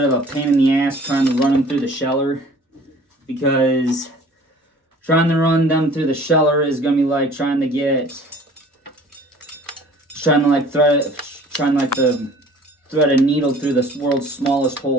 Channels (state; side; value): normal; both; correlation 0.49